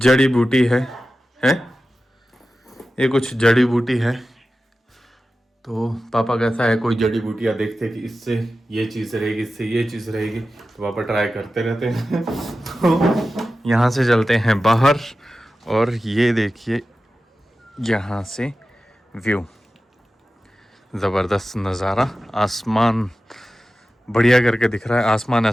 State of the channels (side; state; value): both; normal; correlation 0.94